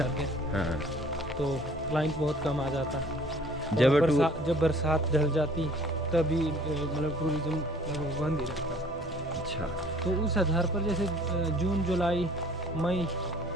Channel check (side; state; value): both; normal; correlation 0.53